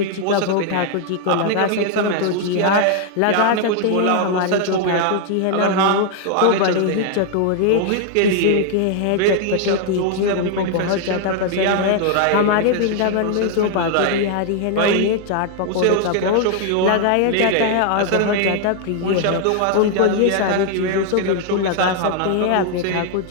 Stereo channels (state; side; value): different; both; correlation 0.00